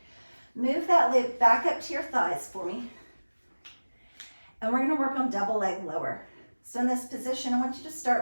Move that loop back up to your thighs for me. And we're going to work on double leg lower. So in this position, I want you to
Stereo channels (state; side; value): inverted; both; correlation -1.00